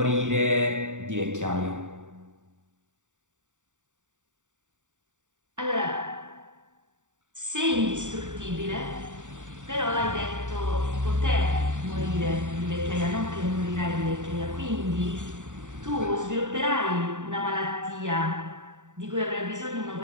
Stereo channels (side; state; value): left; late; 0.86 ms